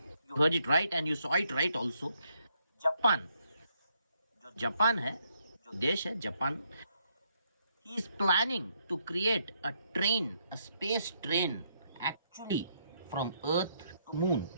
you heard it right and you saw it right also। Japan, जो जापान है, जो देश है Japan, he is planning to create a train, a space train actually from earth to moon।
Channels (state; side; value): inverted; both; correlation -0.75